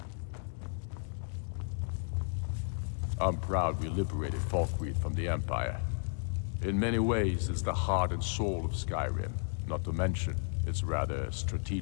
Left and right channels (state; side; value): silent; right; digital silence